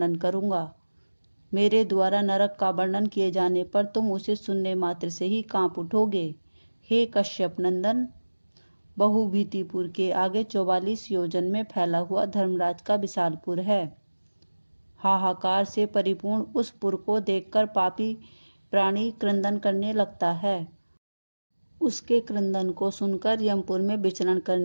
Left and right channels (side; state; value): both; inverted; correlation -1.00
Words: करूंगा। मेरे द्वारा नरक का वर्णन किए जाने पर तुम उसे सुनने मात्र से ही कांप उठोगे। हे कश्यप नंदन, बहुभीतिपुर के आगे 44 योजन में फैला हुआ धर्मराज का विशालपुर है। हाहाकार से परिपूर्ण उस पुर को देखकर पापी प्राणी क्रंदन करने लगता है। उसके क्रंदन को सुनकर यमपुर में विचरण